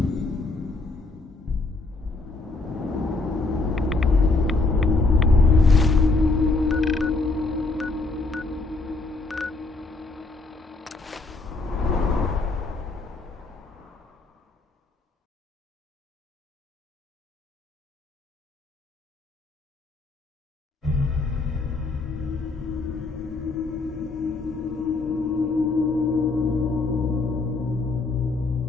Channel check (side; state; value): right; quieter; 3.4 dB